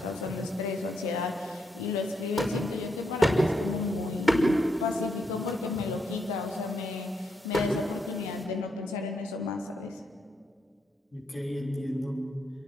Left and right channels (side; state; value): both; normal; correlation 0.79